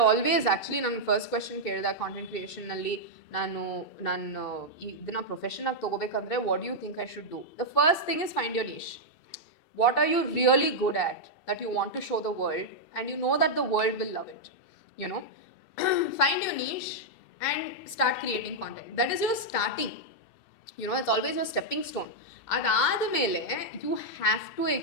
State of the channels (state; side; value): late; right; 2.7 ms